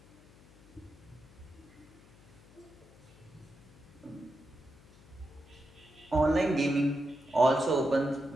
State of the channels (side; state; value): left; noise; hum, 24 dB below the sound